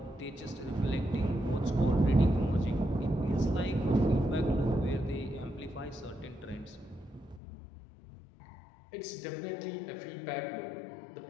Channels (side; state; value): right; drops out; at 7.4 s